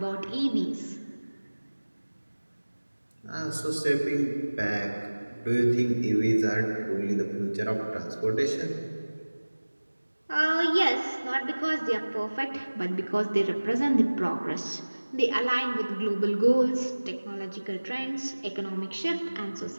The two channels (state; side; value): inverted; both; correlation -1.00